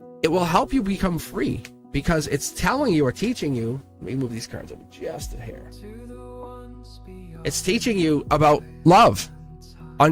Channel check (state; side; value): identical; both; correlation 1.00